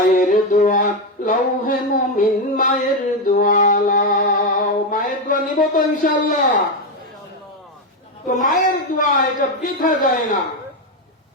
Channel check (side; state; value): both; normal; correlation 0.08